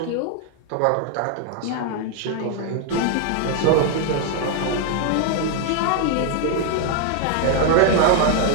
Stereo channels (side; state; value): both; different; correlation 0.00